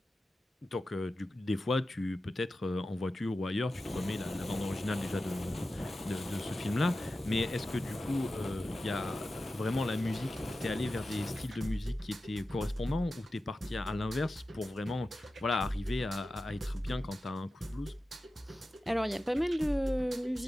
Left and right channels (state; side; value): normal; both; correlation 0.93